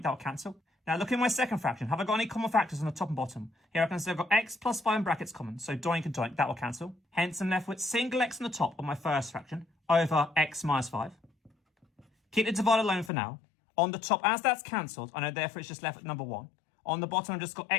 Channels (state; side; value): drops out; right; at 13.1 s